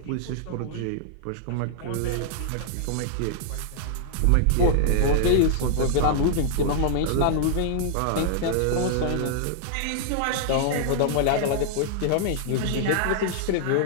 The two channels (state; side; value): different; both; correlation -0.01